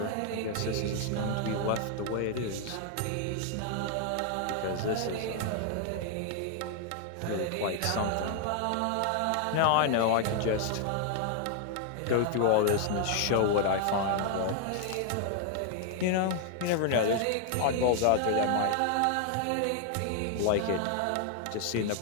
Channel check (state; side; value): different; both; correlation 0.00